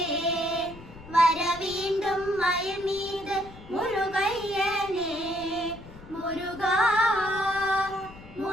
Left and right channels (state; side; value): noise; left; rumble, 18 dB below the sound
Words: வர வேண்டும் மயில் மீது முருகையனே. முருகா